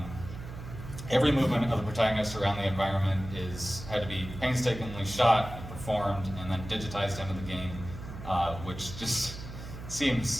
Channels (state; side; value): noise; right; hum, 11 dB below the sound